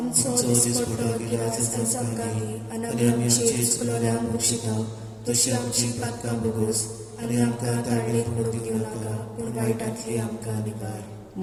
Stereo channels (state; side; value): identical; both; correlation 1.00